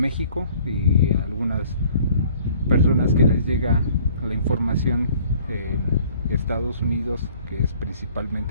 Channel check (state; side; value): inverted; both; correlation -0.55